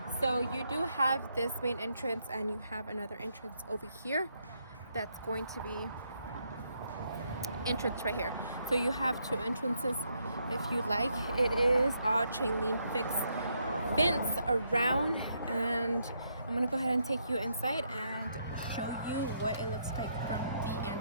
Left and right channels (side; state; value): both; inverted; correlation -0.76